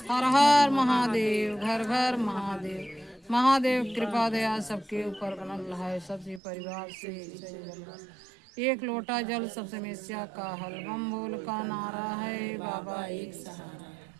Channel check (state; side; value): drops out; left; at 6.4 s